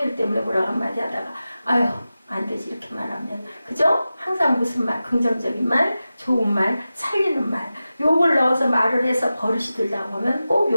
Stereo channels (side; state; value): both; inverted; correlation -0.94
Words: 때문에 뭐라고 한마디 하다가 아유 안 되지 이렇게 말하면, 그죠? 항상 무슨 말, 긍정적인 말, 좋은 말, 살리는 말, 욕을 넣어서 말을 해서 버릇이 들다 보면 꼭